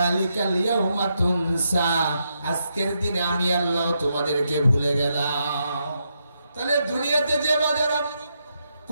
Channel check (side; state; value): both; inverted; correlation -0.82